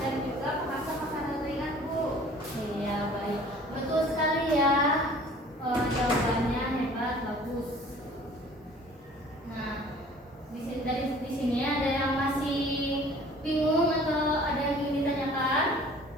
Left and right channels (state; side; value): normal; both; correlation 0.50